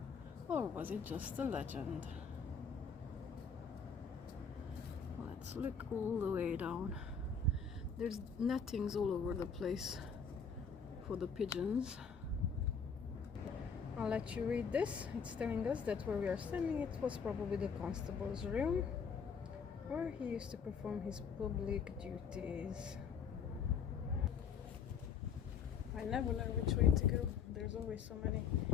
or was it just a legend? Let's look all the way down. There's nettings all over the place for the pigeons. I'll let you read this. It's telling us that where we are standing, it was probably the constable's room, where he used to perform his public duties. I never know which way to go. There's always so many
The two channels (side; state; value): right; quieter; 6.1 dB